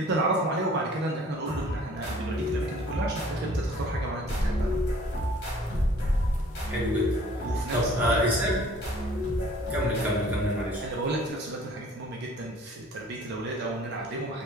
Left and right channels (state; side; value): normal; both; correlation 0.53